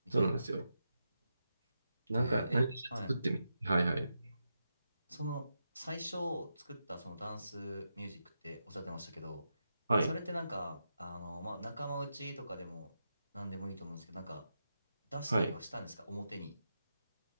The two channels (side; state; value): both; inverted; correlation -0.87